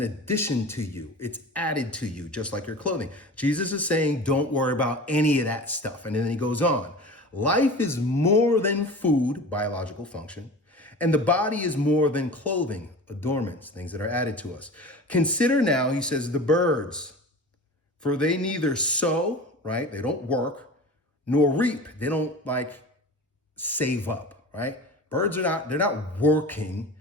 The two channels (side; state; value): both; normal; correlation 0.35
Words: addition to you. It's added to you, just like your clothing. Jesus is saying, don't worry about any of that stuff. And then he goes on. Life is more than food, biological function, and the body is more than clothing, adornments, things that are added to us. Consider now, he says, the birds, for they neither sow, right? They don't work, nor reap. They don't save up, right? Birds they're not working,